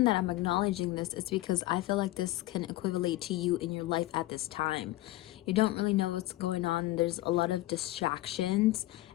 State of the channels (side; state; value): right; quieter; 17.4 dB